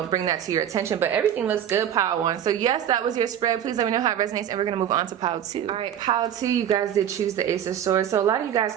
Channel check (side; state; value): left; quieter; 9.9 dB